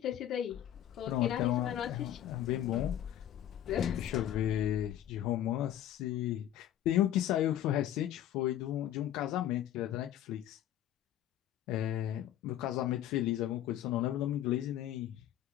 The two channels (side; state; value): right; quieter; 11.8 dB